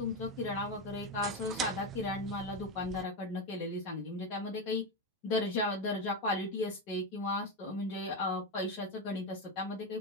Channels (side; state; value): both; normal; correlation 0.12